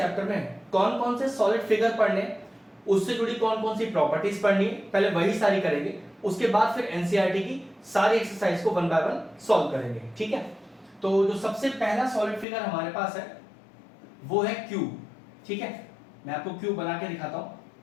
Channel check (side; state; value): right; drops out; at 12.5 s